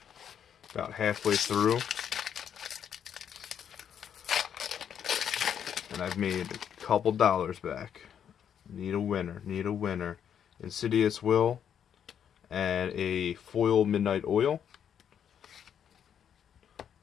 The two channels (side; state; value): right; quieter; 8.6 dB